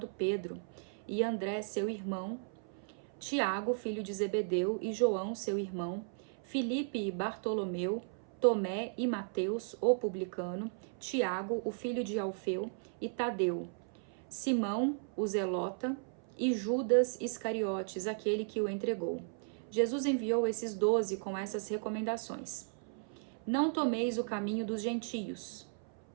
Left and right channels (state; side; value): silent; left; 54 dB below the other